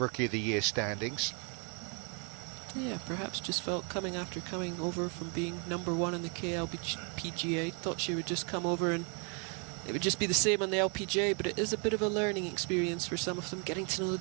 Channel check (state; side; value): quieter; left; 37.6 dB